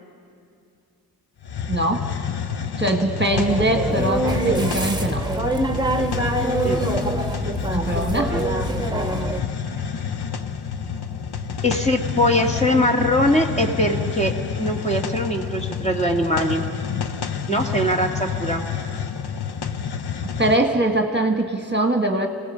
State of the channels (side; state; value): both; normal; correlation 0.34